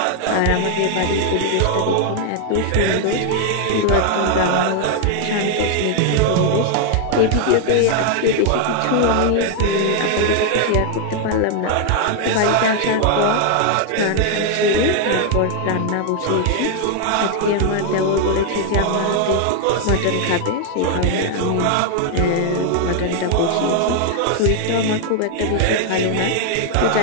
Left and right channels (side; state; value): both; different; correlation 0.00